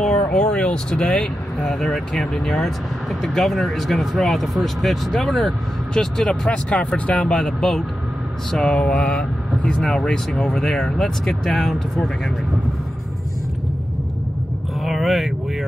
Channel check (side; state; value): both; normal; correlation 0.90